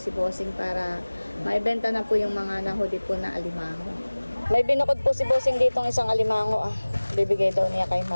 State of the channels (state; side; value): inverted; both; correlation -1.00